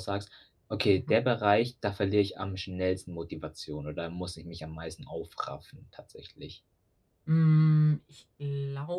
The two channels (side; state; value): both; identical; correlation 1.00